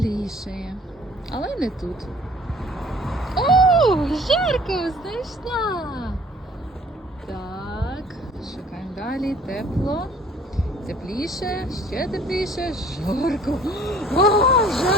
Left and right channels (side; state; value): both; normal; correlation 0.53